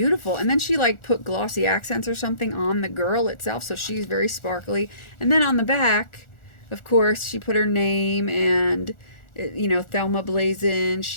And then she like put glossy accents or something on the girl itself, so she's very sparkly. And then on the back, of course, she put her name and you know, Thelma Blazin,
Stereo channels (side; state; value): right; late; 1.4 ms